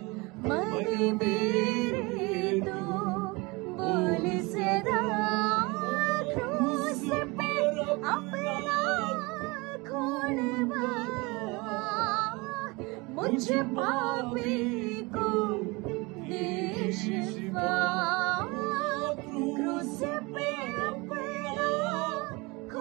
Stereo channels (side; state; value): left; quieter; 25.5 dB